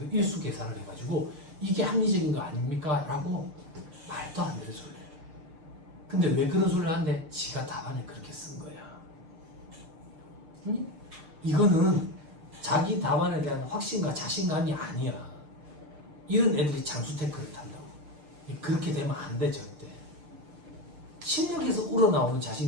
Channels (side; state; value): left; late; 6.7 ms